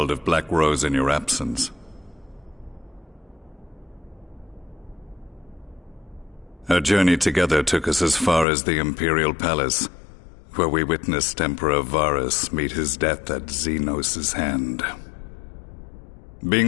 of Black Rose in your absence. Our journey together took us as far as the Imperial Palace, where we witnessed Emperor Varus meet his death at Xenos' hand.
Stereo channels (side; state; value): right; drops out; at 8.5 s